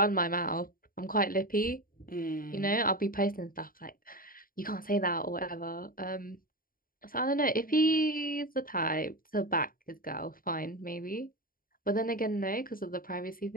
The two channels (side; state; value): right; late; 0.41 ms